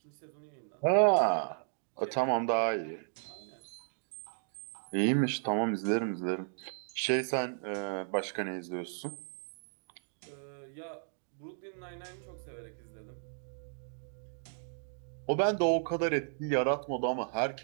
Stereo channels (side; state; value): left; silent; digital silence